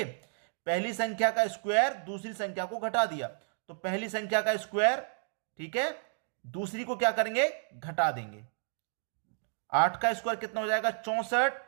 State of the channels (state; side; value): silent; left; digital silence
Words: पहली संख्या का स्क्वायर, दूसरी संख्या को घटा दिया, तो पहली संख्या का स्क्वायर, ठीक है, दूसरी को क्या करेंगे, घटा देंगे। 8 का स्क्वायर कितना हो जाएगा, 64,